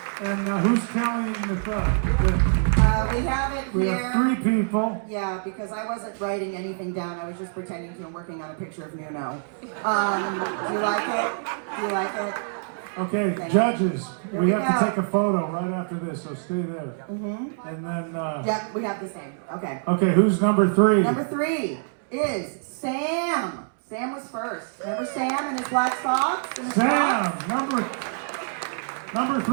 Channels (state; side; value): silent; left; digital silence